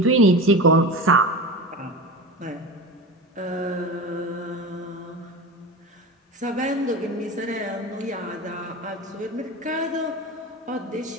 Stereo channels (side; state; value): both; normal; correlation 0.27